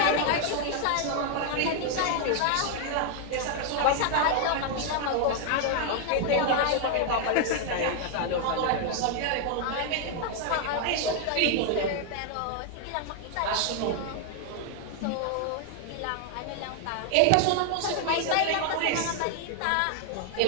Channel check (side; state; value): both; different; correlation 0.00